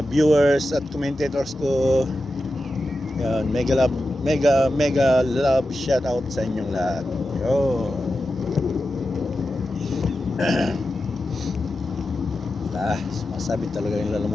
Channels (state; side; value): normal; both; correlation 0.91